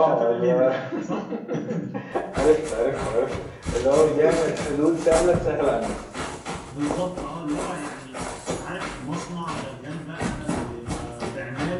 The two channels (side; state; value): both; identical; correlation 1.00